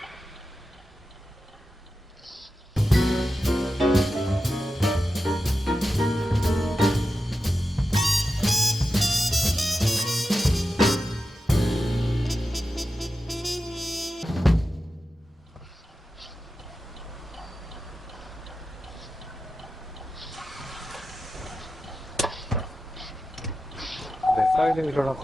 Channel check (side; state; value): both; normal; correlation 0.92